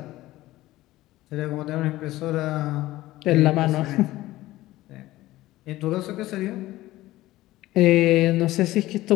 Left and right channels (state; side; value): quieter; right; 16.7 dB